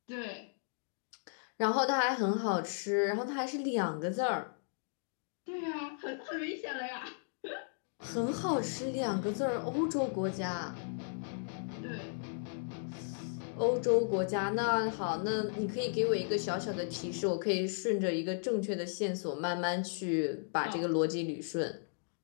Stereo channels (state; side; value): silent; right; digital silence